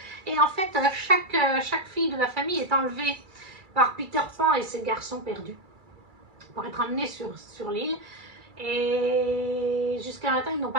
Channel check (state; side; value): late; left; 2.3 ms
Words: Et en fait, chaque fille de la famille est enlevée par Peter Pan et ses garçons perdus pour être emmenés sur l'île. Et jusqu'à maintenant, ils n'ont